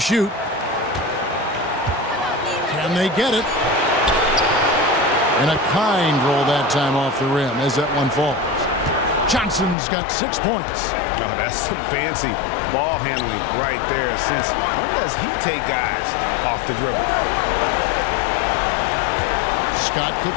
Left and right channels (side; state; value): right; drops out; at 9.8 s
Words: Can they get it? And a kind roll that time off the rim as that one falls. Johnson's got 6 points. Oh, that's some fancy ball handling right there. Since when does he take guys off the dribble? Scott